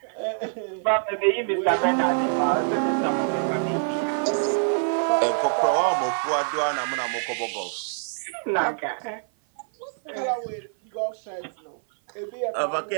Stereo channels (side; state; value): left; silent; 56 dB below the other